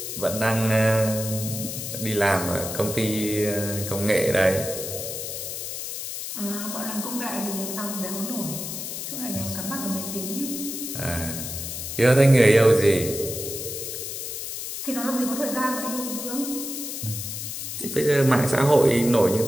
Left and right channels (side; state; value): left; noise; hiss, 6 dB below the sound